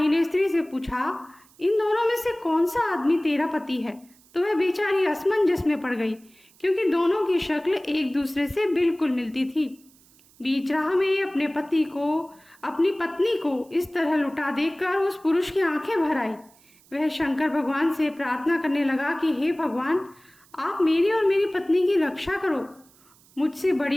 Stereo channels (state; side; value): noise; right; hiss, 29 dB below the sound